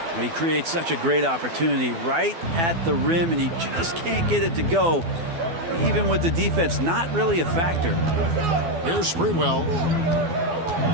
He creates such a great opportunity right at the rim, and he just can't get it to go. Even with the defense, not really a factor. Here's Sprewell.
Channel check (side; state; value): left; late; 12 ms